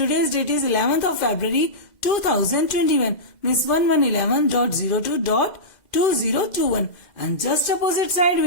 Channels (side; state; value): right; late; 2.1 ms